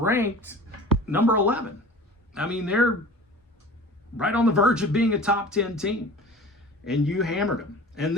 number 11. I mean, they're right on the verge of being a top 10 team. and you hammered them. And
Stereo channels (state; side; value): normal; both; correlation 0.39